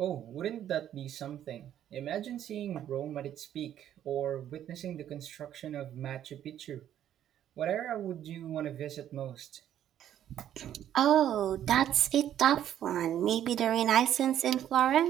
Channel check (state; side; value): quieter; left; 10.9 dB